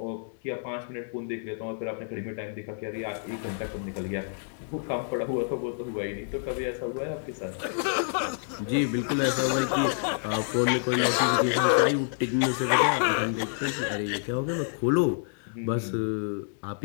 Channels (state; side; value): silent; right; digital silence